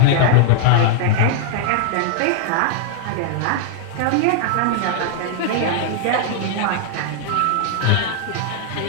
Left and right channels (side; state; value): both; different; correlation -0.01